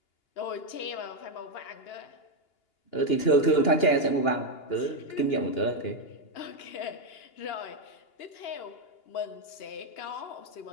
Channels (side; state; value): right; late; 2.8 ms